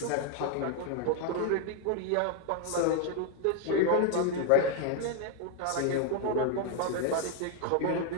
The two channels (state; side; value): different; both; correlation 0.00